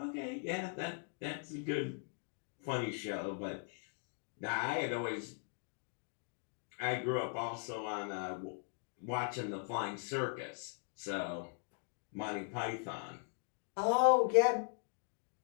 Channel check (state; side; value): silent; right; 51 dB below the other